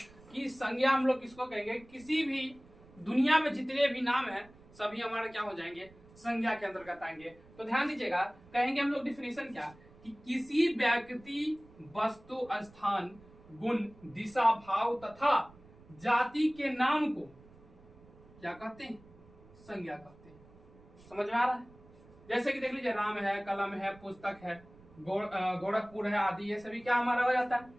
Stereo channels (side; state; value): right; noise; rumble, 24 dB below the sound